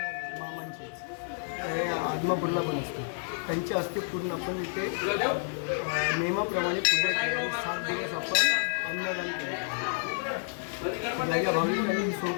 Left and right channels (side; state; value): right; silent; 58 dB below the other